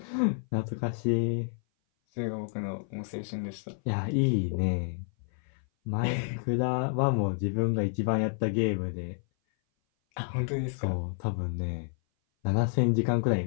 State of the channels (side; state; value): right; silent; 57 dB below the other